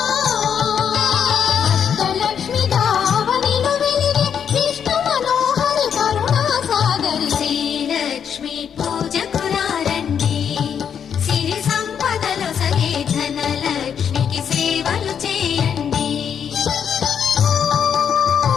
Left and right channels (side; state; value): right; quieter; 7.9 dB